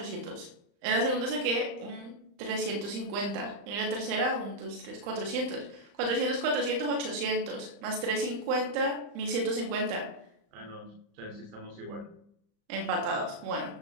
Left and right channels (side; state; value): left; late; 35 ms